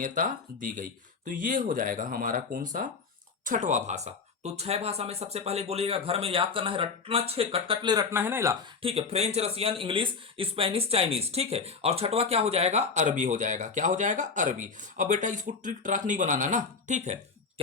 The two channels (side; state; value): right; quieter; 4.9 dB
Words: दी गई। तो ये हो जाएगा हमारा कौन सा, छठवां भाषा। तो 6 भाषा में सबसे पहले बोलिएगा, घर में याद करना है, रटना, 6 कटकटले रटना है ना इला, ठीक है। French, Russian, English, Spanish, Chinese, ठीक है। और छठवा क्या हो जाएगा, अरबी हो जाएगा, क्या हो जाएगा, अरबी। अब बेटा इसको ट्रिक ट्रैक नहीं बनाना ना, ठीक है।